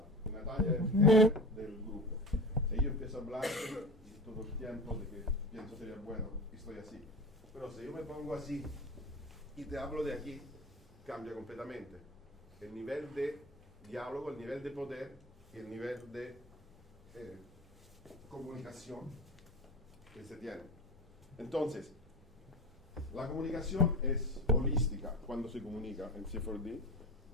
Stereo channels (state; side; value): normal; both; correlation 0.30